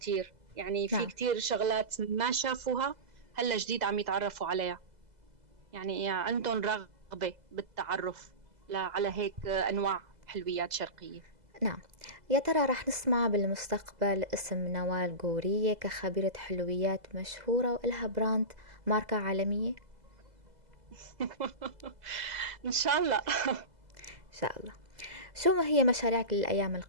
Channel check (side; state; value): left; late; 2.0 ms